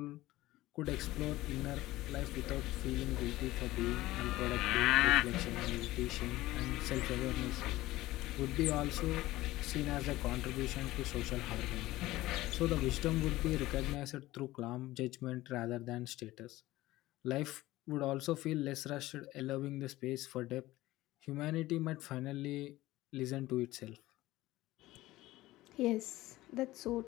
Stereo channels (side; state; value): right; quieter; 17.3 dB